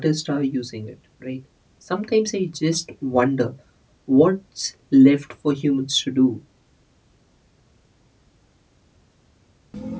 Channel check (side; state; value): both; identical; correlation 1.00